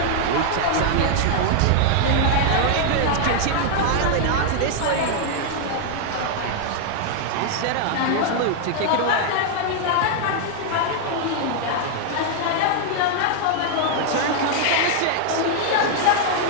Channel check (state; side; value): different; both; correlation 0.00